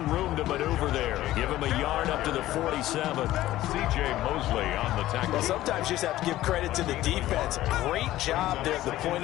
room to maneuver there. Give him a yard up to the 47. C.J. Mosley on the tackle. Well, sometimes you just have to give credit to the defense. Great job there at the point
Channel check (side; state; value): right; quieter; 15.0 dB